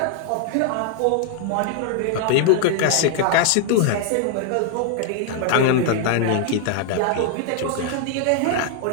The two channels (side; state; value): both; different; correlation 0.00